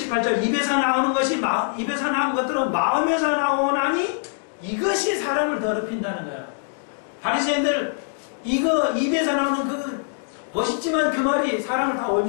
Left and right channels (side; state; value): right; silent; digital silence